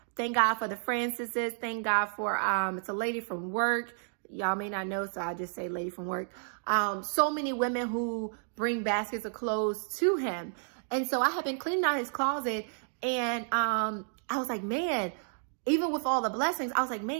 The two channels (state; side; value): silent; left; digital silence